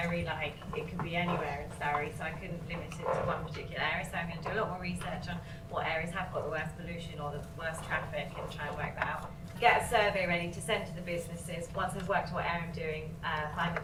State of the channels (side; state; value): both; identical; correlation 1.00